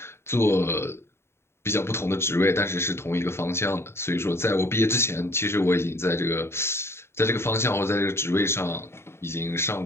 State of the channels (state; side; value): late; right; 0.12 ms